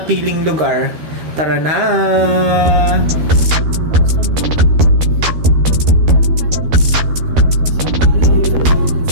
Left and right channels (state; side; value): late; left; 13 ms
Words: lugar. Tara na!